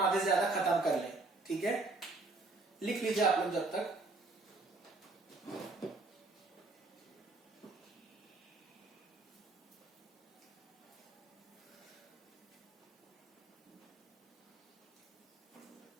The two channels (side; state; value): left; quieter; 3.3 dB